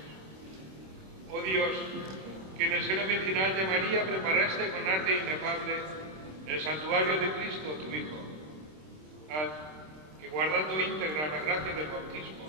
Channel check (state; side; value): late; left; 26 ms